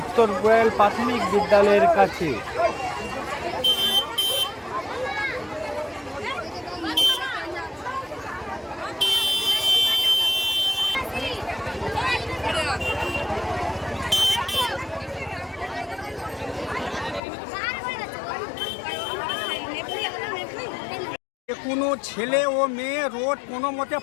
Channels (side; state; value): right; drops out; at 17.2 s